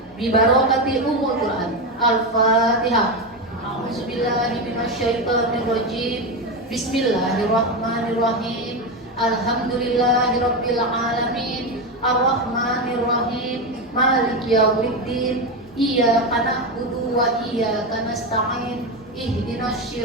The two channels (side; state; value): both; normal; correlation 0.14